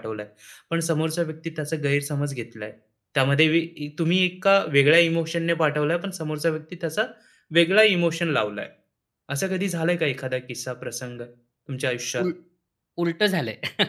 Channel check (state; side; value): identical; both; correlation 1.00